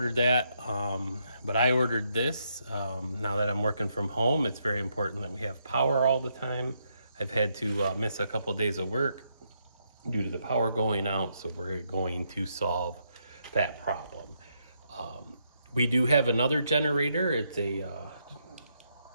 that, but I ordered this. Now that I'm working from home, it's very important that we have power all the time. I've had to miss a couple of days of work due to the power going out, so we're going to solve that problem. We do have another generator. It's a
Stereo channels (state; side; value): inverted; both; correlation -0.78